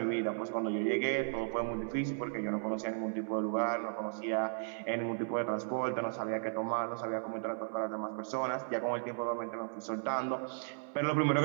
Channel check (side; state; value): left; silent; 54 dB below the other